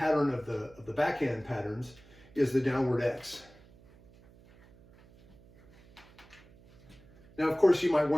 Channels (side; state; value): right; noise; hum, 25 dB below the sound